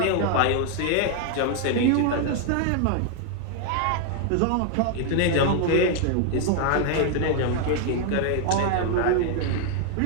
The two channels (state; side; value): different; both; correlation 0.00